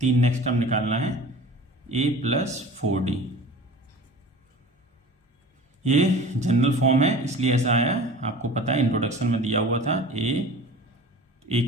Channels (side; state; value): both; normal; correlation 0.39